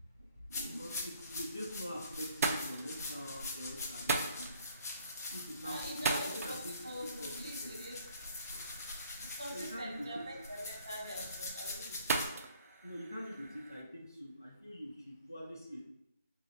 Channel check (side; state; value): both; inverted; correlation -0.59